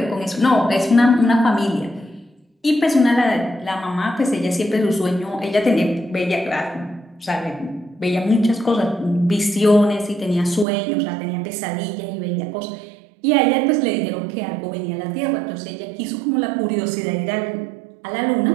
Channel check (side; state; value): left; drops out; at 10.7 s